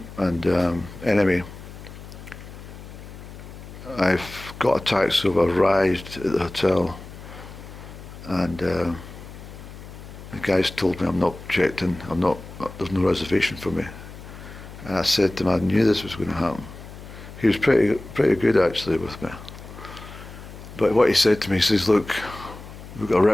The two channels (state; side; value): noise; left; hum, 15 dB below the sound